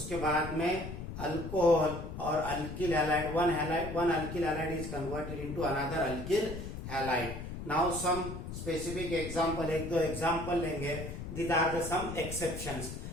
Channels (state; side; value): noise; left; rumble, 8 dB below the sound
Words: बाद में alcohol और alkyl halide one alkyl halide is converted into another alkyl halide. Now some specific example, एक दो एग्जांपल लेंगे. These are the some exceptions.